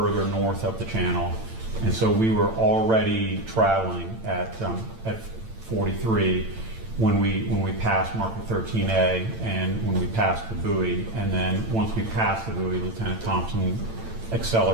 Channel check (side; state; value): left; late; 8.9 ms